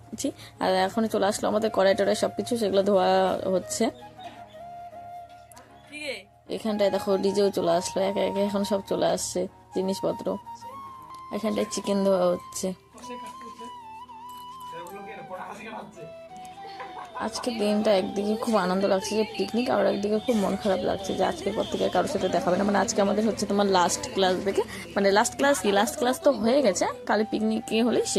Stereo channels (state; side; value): identical; both; correlation 1.00